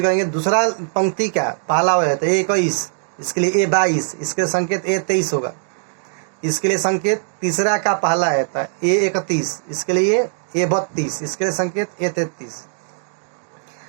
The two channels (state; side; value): silent; left; 64 dB below the other